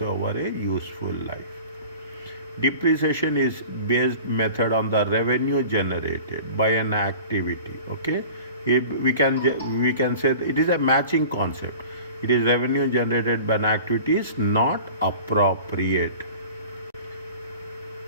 over a useful life. Depreciation is based method on the revenue generated by an activity. Okay, we can say it is a matching concept. It is revenue generated by an activity is not appropriate.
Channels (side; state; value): both; inverted; correlation -0.41